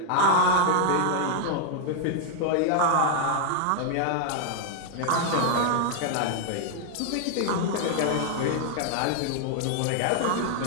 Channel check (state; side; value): different; both; correlation 0.00